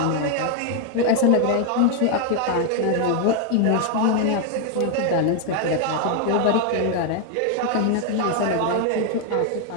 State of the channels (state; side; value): different; both; correlation 0.00